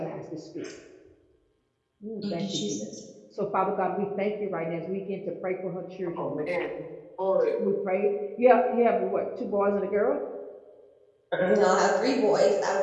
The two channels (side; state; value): both; identical; correlation 1.00